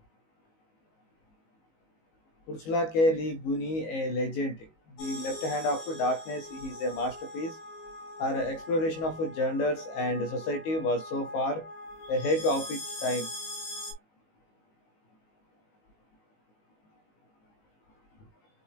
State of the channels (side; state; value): right; late; 19 ms